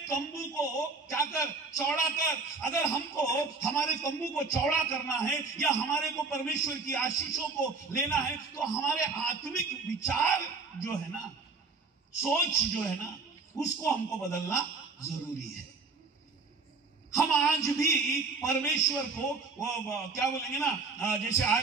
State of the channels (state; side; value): quieter; left; 4.3 dB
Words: तंबू को क्या कर, चौड़ा कर। अगर हमको हमारे तंबू को चौड़ा करना है या हमारे को परमेश्वर की आशीषों को लेना है, तो हमारे आत्मिक विचार जो है ना, सोच जो है ना, उसको हमको बदलना जरूरी है। हम आज भी परमेश्वर को वो क्या बोलेंगे ना, जैसे